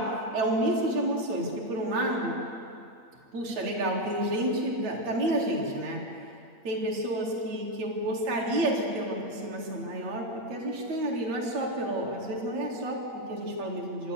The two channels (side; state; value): left; late; 8.6 ms